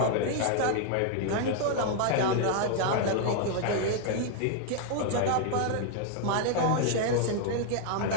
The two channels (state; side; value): different; both; correlation 0.00